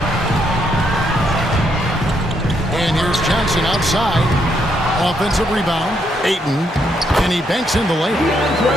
And here's Johnson outside. Offensive rebound. Ayton. And he banks in the lane.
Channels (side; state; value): both; normal; correlation 0.75